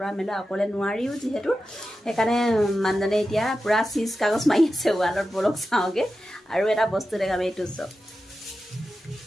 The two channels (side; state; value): both; normal; correlation 0.92